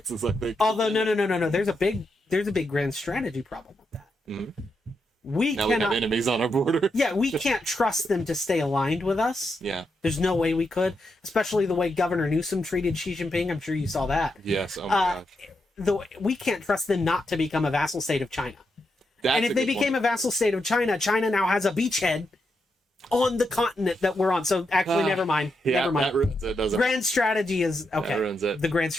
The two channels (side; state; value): both; normal; correlation 0.84